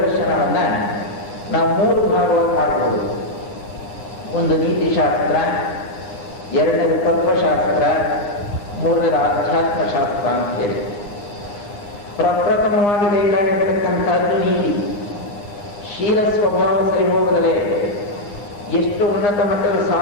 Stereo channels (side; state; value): right; late; 9.6 ms